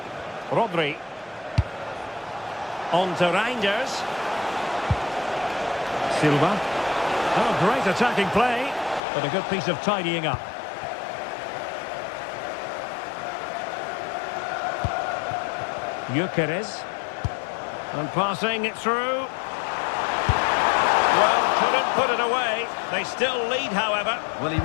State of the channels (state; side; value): drops out; right; at 9.0 s